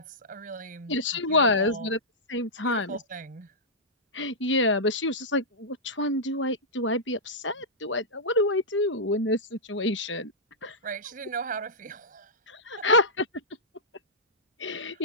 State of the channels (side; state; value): both; normal; correlation -0.13